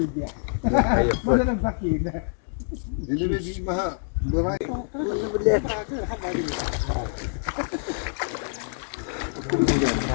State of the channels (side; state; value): right; silent; digital silence